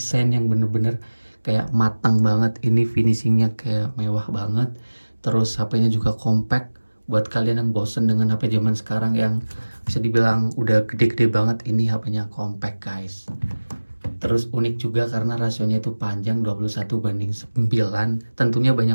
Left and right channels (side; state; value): both; inverted; correlation -1.00